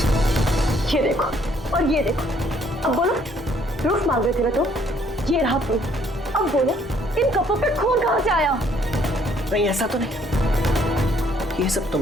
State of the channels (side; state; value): both; normal; correlation 0.64